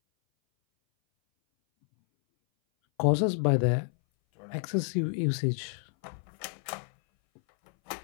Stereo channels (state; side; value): silent; right; 58 dB below the other